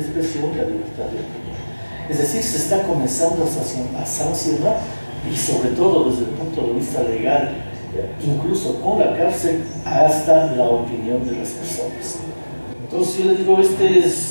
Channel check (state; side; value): inverted; both; correlation -1.00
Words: la libertad de opinión. Es decir, se está comenzando a sancionar y sobre todo desde el punto de vista legal, incluso con la cárcel, hasta la opinión de las personas. Entonces yo le digo,